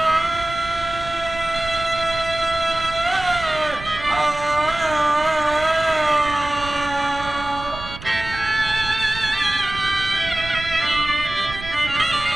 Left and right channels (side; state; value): right; noise; rumble, 13 dB below the sound